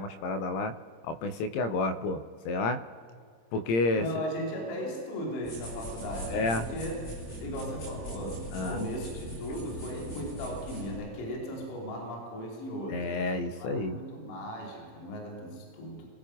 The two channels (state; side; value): late; right; 26 ms